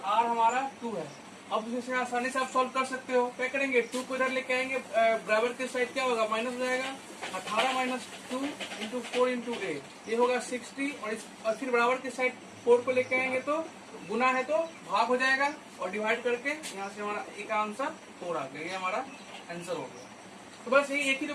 R हमारा 2 है। अब इसे आसानी से आप सॉल्व कर सकते हो। क्या करेंगे 2 को इधर लेके आएंगे, बराबर के साइड क्या होगा माइनस हो जाएगा। 18 माइनस 2 इंटू 4 इंटू A ये होगा 60 और फिर बराबर के साइड 4 को लेके आएंगे तो गुना है तो भाग हो जाएगा और डिवाइड करके यहाँ से हमारा A का आंसर 4 आ गया। ये हमारा आंसर हो गया। तो बस यही एक ही जो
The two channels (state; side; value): identical; both; correlation 1.00